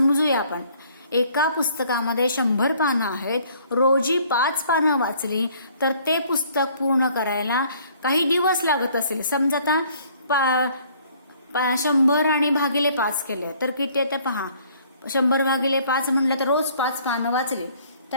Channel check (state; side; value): inverted; both; correlation -0.59